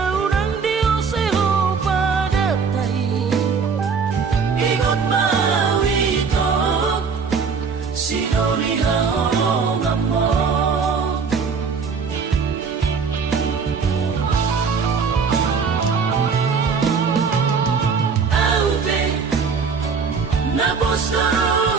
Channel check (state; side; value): quieter; left; 5.5 dB